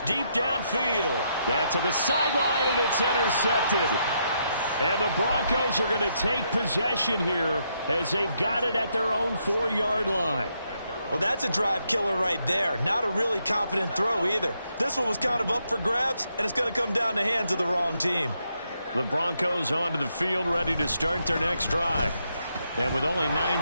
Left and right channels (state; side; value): inverted; both; correlation -0.77